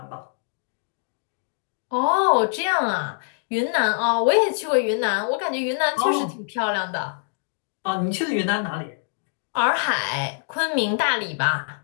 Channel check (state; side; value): silent; right; digital silence